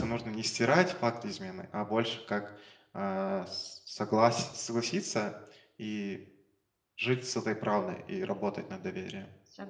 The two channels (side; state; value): both; identical; correlation 1.00